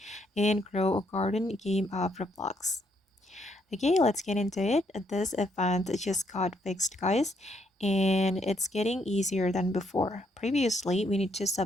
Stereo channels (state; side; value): normal; both; correlation 0.73